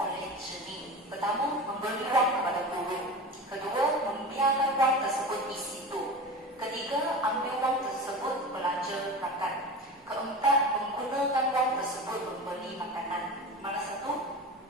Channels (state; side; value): normal; both; correlation 0.30